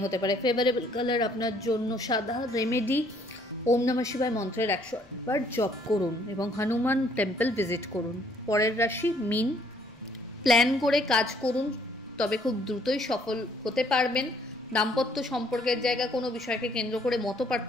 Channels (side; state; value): both; normal; correlation 0.64